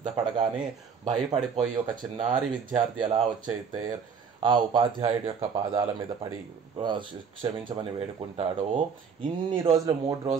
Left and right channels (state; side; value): quieter; left; 6.2 dB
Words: భయపడిపోయి ఒక చిన్నారి విద్యార్థి ఎలా వచ్చైతే ఆ ఉపాధ్యాయుడి యొక్క పాదాల మీద పడి క్షమించమని వేడుకుంటాడో, ఇన్ని రోజులు 3